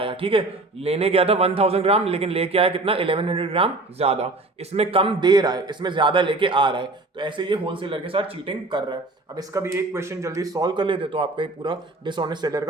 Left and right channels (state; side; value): quieter; left; 3.1 dB